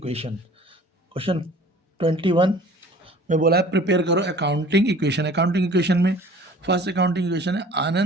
क्वेश्चन 21 में बोला है प्रिपेयर करो अकाउंटिंग इक्वेशन। अकाउंटिंग इक्वेशन में फर्स्ट अकाउंटिंग इक्वेशन है,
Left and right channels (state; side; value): normal; both; correlation 0.48